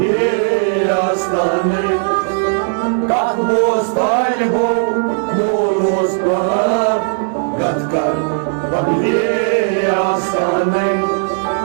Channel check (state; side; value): silent; left; digital silence